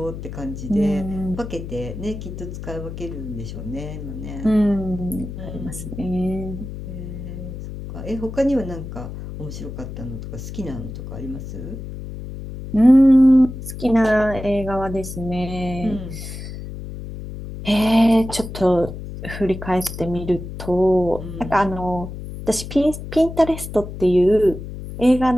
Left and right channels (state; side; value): noise; left; hum, 9 dB below the sound